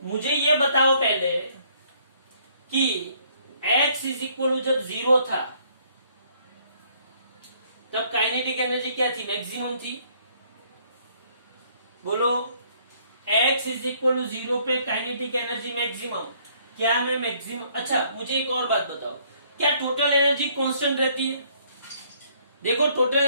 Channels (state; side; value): inverted; both; correlation -0.64